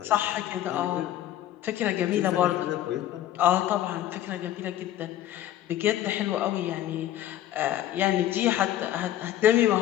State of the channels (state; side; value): quieter; right; 12.7 dB